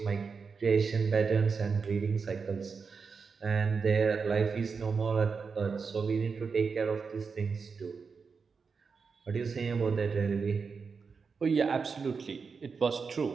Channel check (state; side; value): quieter; left; 5.3 dB